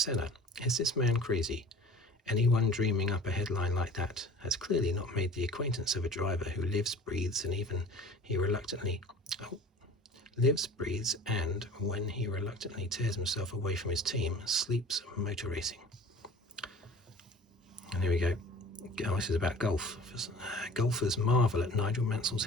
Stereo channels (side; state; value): both; normal; correlation 0.43